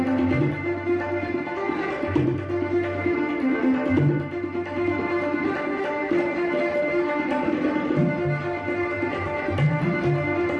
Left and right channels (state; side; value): identical; both; correlation 1.00